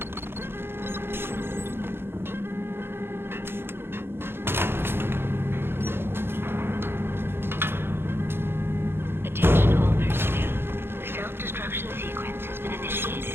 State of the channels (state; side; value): late; left; 0.11 ms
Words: Attention all personnel. The self-destruction sequence has been